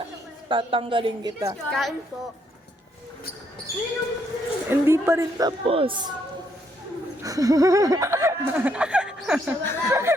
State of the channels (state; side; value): normal; both; correlation 0.73